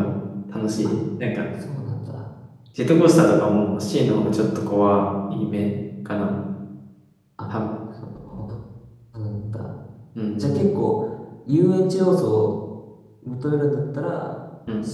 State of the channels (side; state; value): both; identical; correlation 1.00